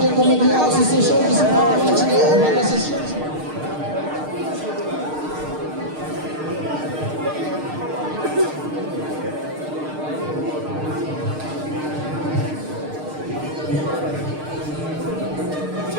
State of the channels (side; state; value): left; late; 6.5 ms